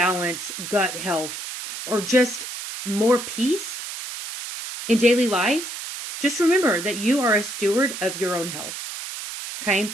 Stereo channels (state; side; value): noise; right; hiss, 8 dB below the sound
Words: gut health, or just more peace in daily life, just remember that you are a steward of your own health.